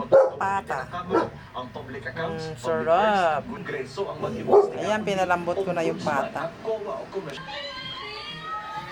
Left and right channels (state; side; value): identical; both; correlation 1.00